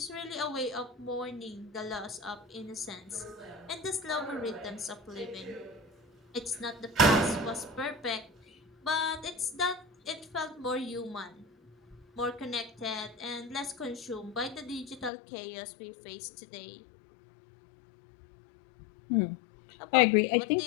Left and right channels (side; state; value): right; drops out; at 15.1 s